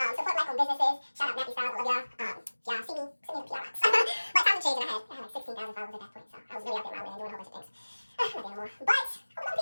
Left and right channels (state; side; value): inverted; both; correlation -1.00